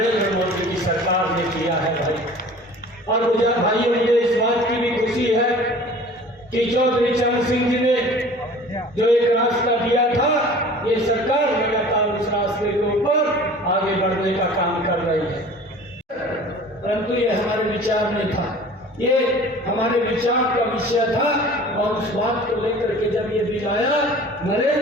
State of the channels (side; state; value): both; normal; correlation 0.44